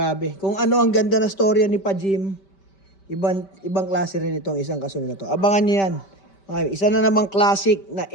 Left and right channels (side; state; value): right; late; 5.2 ms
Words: Kung ano ang ganda na storya ni Pa-Jim, ibang klase rin itong isang kasunod na to. Abangan nyo yan. Isa na namang classic na